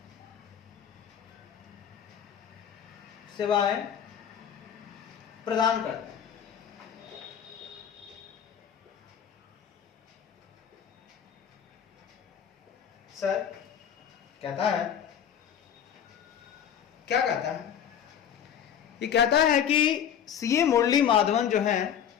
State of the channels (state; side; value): quieter; right; 8.9 dB